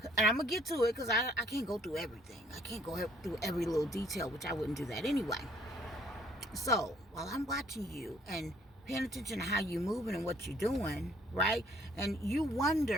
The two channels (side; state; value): both; normal; correlation 0.62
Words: And I'm going to get to it because I can't go through everything. I can't go through every little detail, which I wouldn't do that anyway. So while I'm watching you and paying attention to how you're moving and what you're doing, right? And you